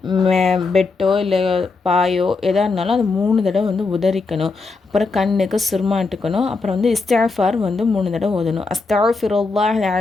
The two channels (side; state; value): right; quieter; 4.0 dB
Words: பெட்டோ இல்லை பாயோ எதாக இருந்தாலும் அது 3 தடவை உதறிக்கணும். அப்புறம் கண்ணுக்கு சுருமாட்டுக்கணும். அப்புறம் இஸ்திஃபார் 3 தடவை ஓதணும். அஸ்தக்ஃபிருல்லாஹல்